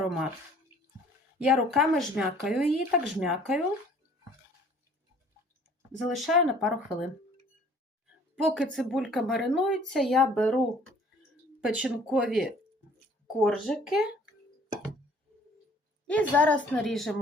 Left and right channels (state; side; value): normal; both; correlation 0.55